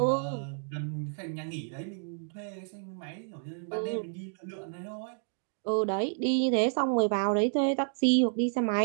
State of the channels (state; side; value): silent; left; digital silence